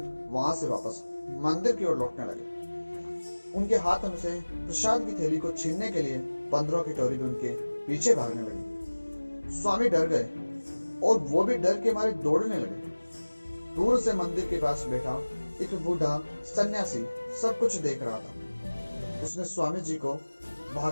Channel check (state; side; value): inverted; both; correlation -1.00